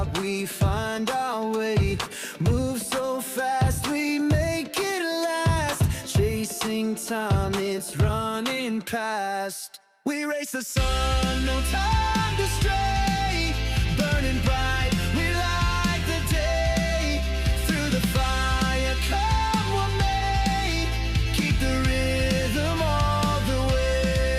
we find our way. Move so fast, we make it last. Chasing time, it's running past. We race the sun, no time to stray. Burning bright,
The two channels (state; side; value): identical; both; correlation 1.00